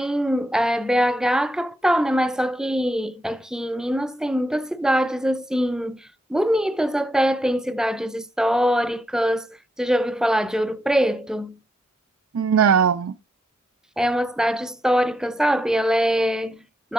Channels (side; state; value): both; normal; correlation 0.80